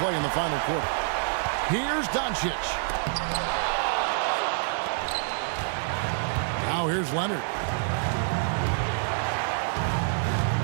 in the final quarter. Here's Doncic. Now here's Leonard.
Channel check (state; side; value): silent; left; digital silence